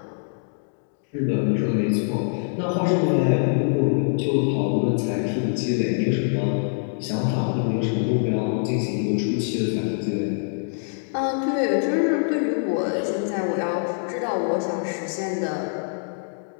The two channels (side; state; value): right; silent; digital silence